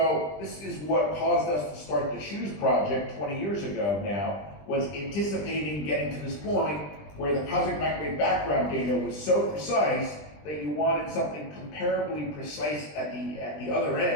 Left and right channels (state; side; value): late; right; 20 ms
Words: this is what caused us to start the SHOES project 20 years ago now, was anticipating getting to this point where the cosmic microwave background data was so precise that you wanted something comparably precise at the other